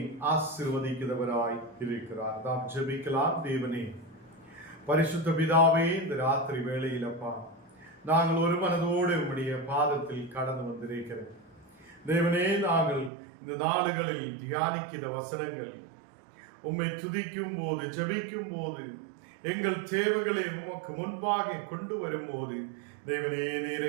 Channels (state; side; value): drops out; left; at 13.1 s